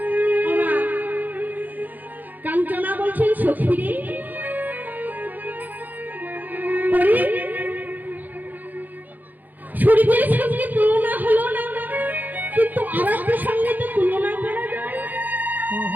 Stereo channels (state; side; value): late; left; 0.084 ms